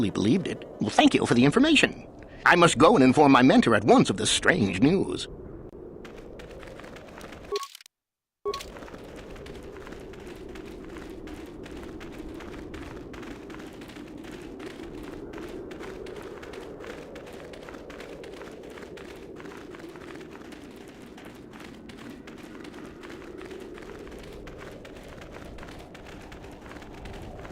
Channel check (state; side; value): identical; both; correlation 1.00